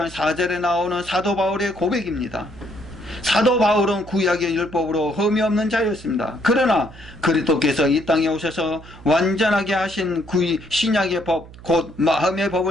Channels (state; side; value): noise; right; hum, 18 dB below the sound